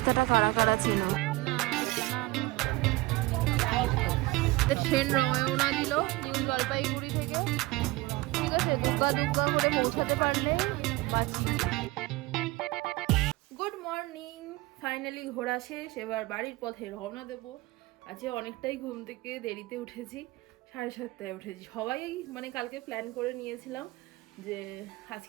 কারা কারা ছিল? ট্রেন রওনা দিল নিউ জলপাইগুড়ি থেকে। ঠিক আছে, দুগ্গা দুগ্গা করে পৌঁছাতে পারলে বাঁচি। গুড মর্নিং, ফাইনালি ঘোরা শেষ, এবার বাড়ির পথে রওনা দেবো। আজকে অনেকটাই ঘুম থেকে দেরিতে উঠেছি, 7:30টায় উঠেছি। সবাই মানে কালকে প্ল্যান করে নিয়েছিলাম যে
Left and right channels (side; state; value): left; quieter; 20.9 dB